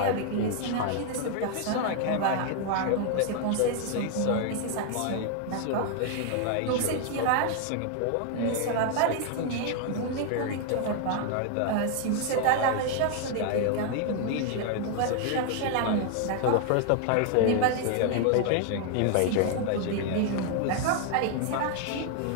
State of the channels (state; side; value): different; both; correlation 0.00